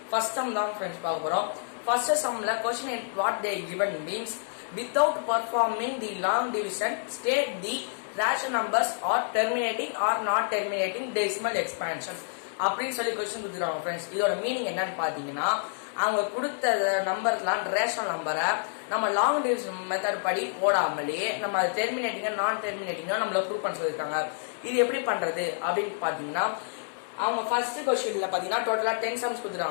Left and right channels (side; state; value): right; silent; digital silence